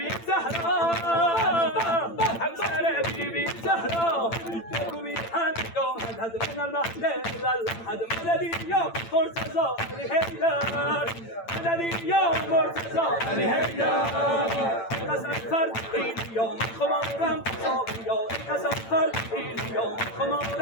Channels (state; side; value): late; right; 8.9 ms